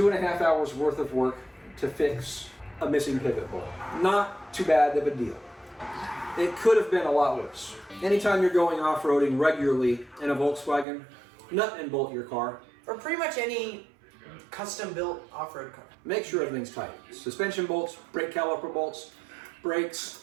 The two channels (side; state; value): left; drops out; at 10.9 s